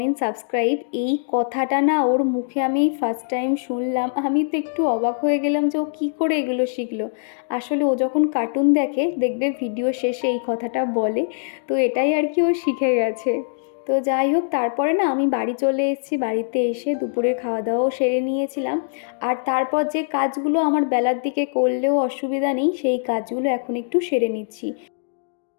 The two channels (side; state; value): right; silent; digital silence